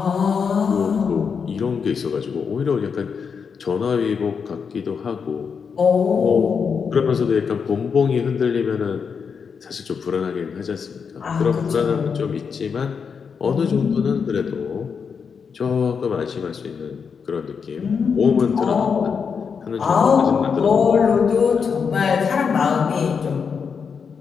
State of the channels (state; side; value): quieter; right; 6.2 dB